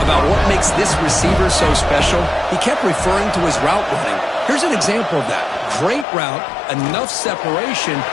about what makes this receiver so special. He kept referring to his route running. Here's an example of that. Great route, enough separation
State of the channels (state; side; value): drops out; right; at 6.1 s